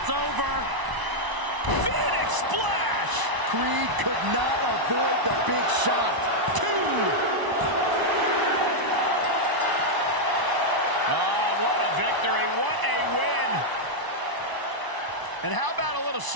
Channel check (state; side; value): late; left; 1.0 ms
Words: over. Phoenix splash. Creed could not avoid the big shot. 2. Oh, what a victory. What a win. And how about a little